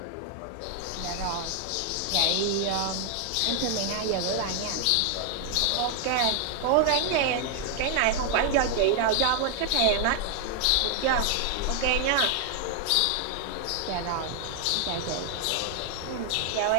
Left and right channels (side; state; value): both; different; correlation 0.00